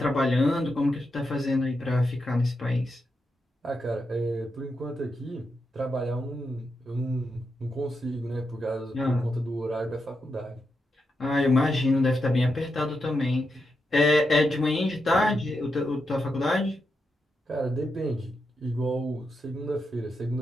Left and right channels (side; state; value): both; normal; correlation 0.85